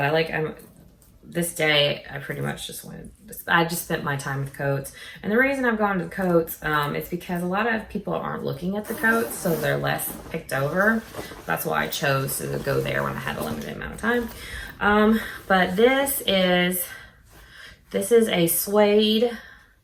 like, this day, I pretty much just I just spent my time with coats. And the reason I've gone to the coats is because a lot of people aren't looking at the coats, so they're less picked over. That's why I chose to go there when I had a limited amount of time. But this is a suede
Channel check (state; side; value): identical; both; correlation 1.00